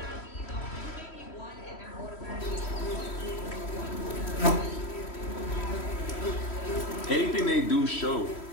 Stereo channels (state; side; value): late; right; 3.1 ms